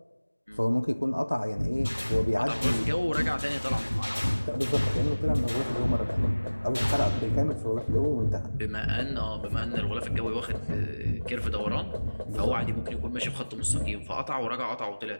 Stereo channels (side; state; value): both; inverted; correlation -1.00